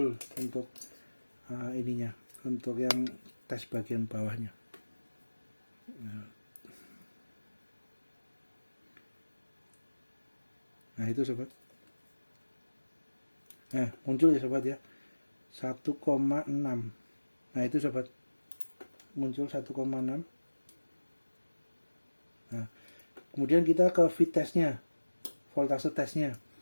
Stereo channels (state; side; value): inverted; both; correlation -1.00